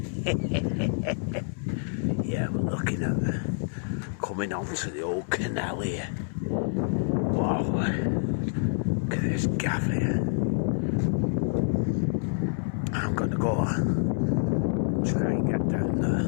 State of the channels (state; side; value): silent; right; 60 dB below the other